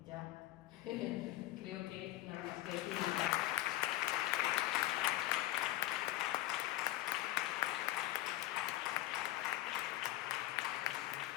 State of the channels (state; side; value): quieter; right; 16.3 dB